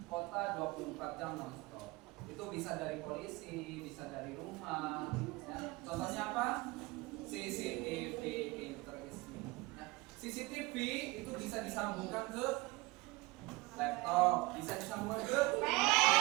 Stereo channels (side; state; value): left; quieter; 22.6 dB